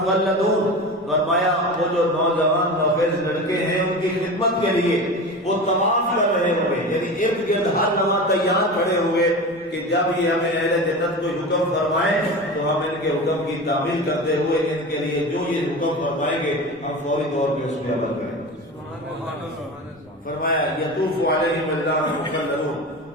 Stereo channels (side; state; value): both; normal; correlation 0.29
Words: فرمایا وہ جو نوجوان نوخیز لڑکے ہیں ان کی خدمت کے لیے وہ طواف کر رہے ہوئے، یعنی ارد گرد ہر لمحہ تیار کھڑے ہوئے کہ جب یہ ہمیں اہل جنت کو حکم فرمائیں تو ہم ان کے حکم کی تعمیل کرتے ہوئے ان کے لیے جو یہ حکم فرمائیں گے ہم فوری طور پہ اس پہ عمل کریں۔ فرمایا یطوف علیہم ولدان مخلدون